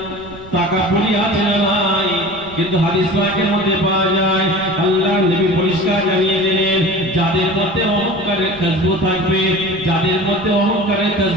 তাকাব্বুরি আছে না নাই? কিন্তু হাদিস পাকের মধ্যে পাওয়া যায় আল্লাহ নবী পরিষ্কার জানিয়ে দিলেন যাদের মধ্যে অহংকারের খুশবু থাকবে, যাদের মধ্যে অহংকারের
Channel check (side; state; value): right; noise; rumble, 20 dB below the sound